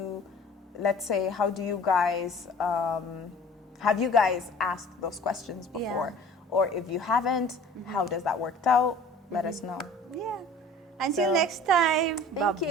let's say, how do you guys, have you guys asked those questions before? Or if you haven't, how does that work out? Let us know. Until next time.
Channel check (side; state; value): both; normal; correlation 0.47